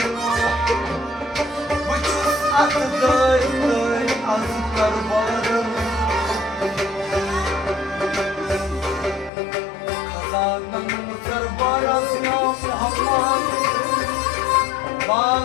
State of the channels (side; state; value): right; drops out; at 9.3 s